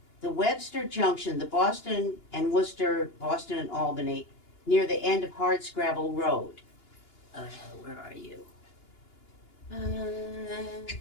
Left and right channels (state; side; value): late; right; 2.8 ms